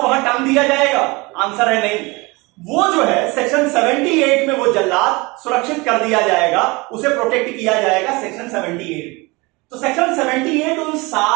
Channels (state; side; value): quieter; left; 25.0 dB